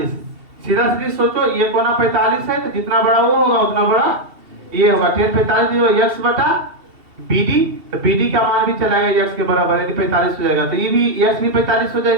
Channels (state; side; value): late; left; 2.7 ms